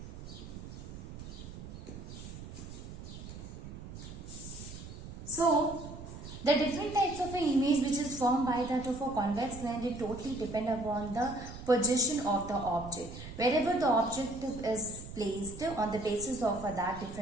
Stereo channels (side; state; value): right; noise; rumble, 12 dB below the sound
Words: So, the different types of an image which is formed by that of a convex lens, it totally depend upon the position of the object. Wherever the object is placed, on the basis of that,